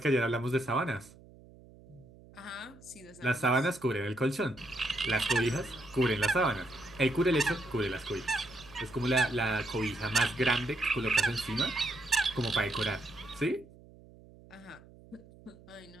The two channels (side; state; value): right; noise; hum, 23 dB below the sound